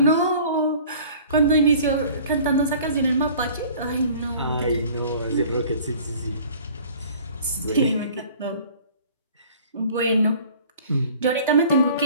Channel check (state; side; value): inverted; both; correlation -0.49